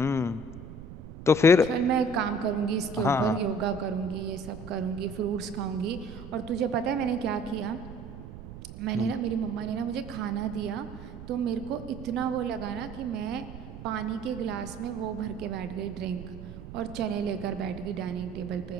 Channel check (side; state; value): right; noise; rumble, 13 dB below the sound